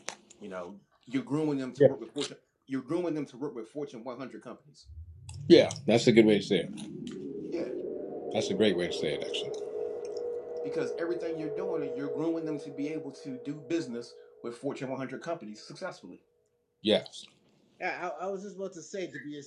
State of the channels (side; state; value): both; identical; correlation 1.00